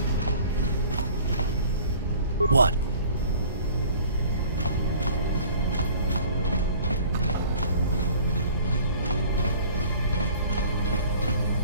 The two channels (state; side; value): inverted; both; correlation -0.49